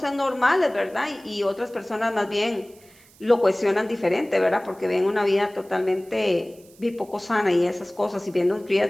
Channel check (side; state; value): right; noise; hiss, 27 dB below the sound